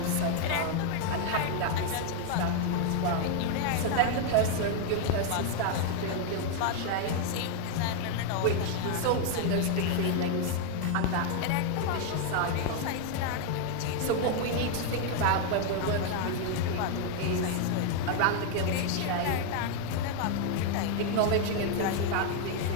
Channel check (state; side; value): different; both; correlation 0.00